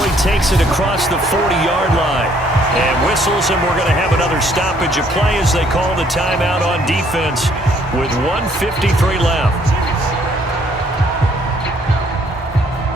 he takes it across the 40-yard line. And whistles, and we're going to have another stoppage of play as they call the timeout on defense with 1:53 left.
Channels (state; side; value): normal; both; correlation 0.64